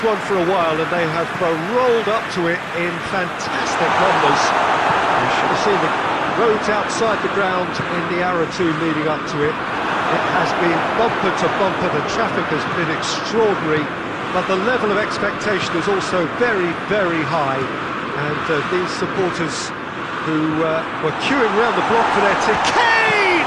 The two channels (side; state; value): both; identical; correlation 1.00